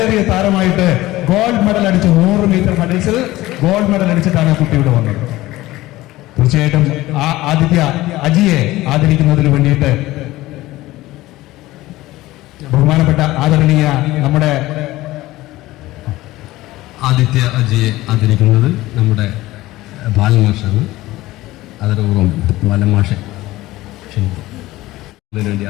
താരമായിട്ട് ഗോൾഡ് മെഡൽ അടിച്ചു. 100 മീറ്റർ ഹഡിൽസിൽ ഗോൾഡ് മെഡൽ അടിച്ചിട്ടാണ് കുട്ടി ഇവിടെ വന്നത്. തീർച്ചയായിട്ടും ആ അജിയെ ആദരിക്കുന്നതിന് വേണ്ടിയിട്ട് ബഹുമാനപ്പെട്ട ആദരണീയ നമ്മുടെ ആദിത്യ അജിയെ ആദരിക്കുന്നത് നമ്മുടെ ബാലമാഷാണ്. അതോടൊപ്പം ബാലമാഷെ ക്ഷണിക്കും. അതിനുവേണ്ടി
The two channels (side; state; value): right; quieter; 17.6 dB